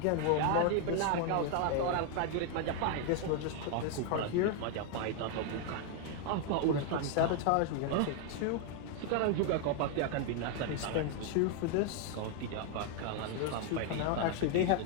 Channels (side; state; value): both; different; correlation 0.01